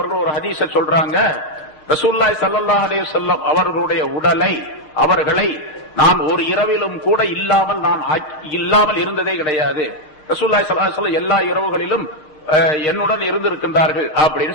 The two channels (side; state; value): right; late; 6.3 ms